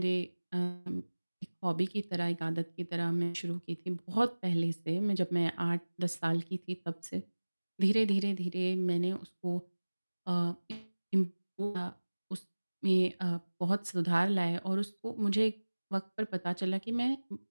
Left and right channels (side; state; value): both; inverted; correlation -1.00